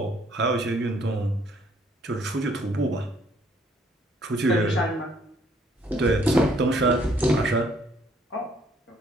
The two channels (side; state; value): both; normal; correlation 0.64